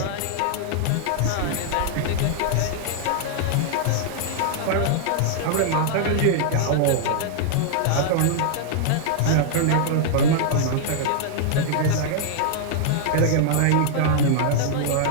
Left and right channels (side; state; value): both; different; correlation -0.01